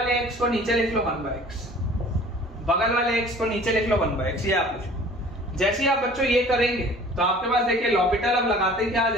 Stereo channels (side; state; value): both; normal; correlation 0.48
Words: x को नीचे लिख लो 1 बाय x, बगल वाले x को नीचे लिख लो 1 बाय x, ये आप लिखो। जैसे ही आप बच्चों ये करेंगे तो आपके पास देखिए लॉपिटल अब लगाते ही क्या आ